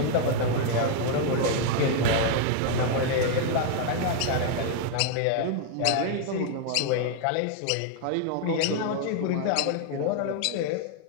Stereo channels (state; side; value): different; both; correlation 0.00